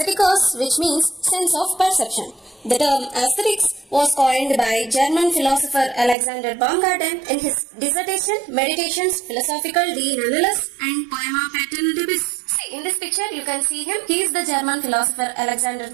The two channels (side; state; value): left; drops out; at 6.2 s